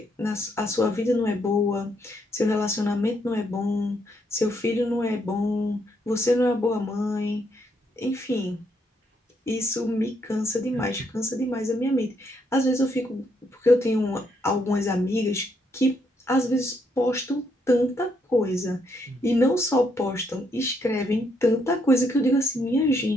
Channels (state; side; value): normal; both; correlation 0.74